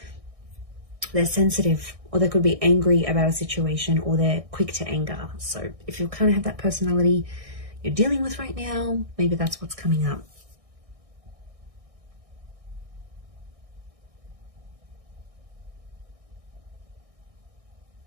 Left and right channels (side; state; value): left; late; 1.6 ms